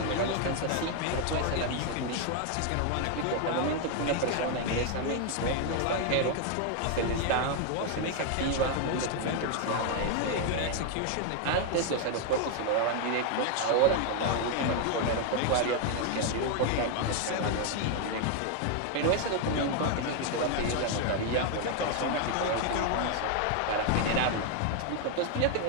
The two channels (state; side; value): different; both; correlation 0.00